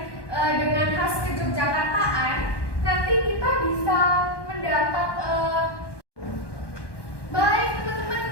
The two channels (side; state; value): right; late; 1.1 ms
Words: dengan khas kejogjakartaan, nanti kita bisa mendapat baik